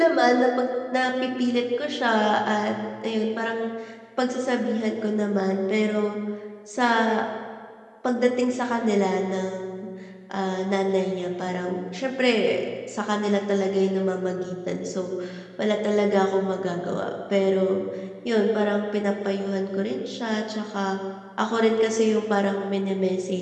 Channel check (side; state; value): both; identical; correlation 1.00